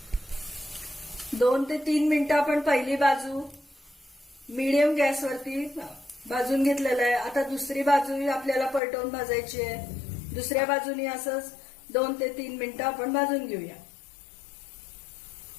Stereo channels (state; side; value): drops out; right; at 8.8 s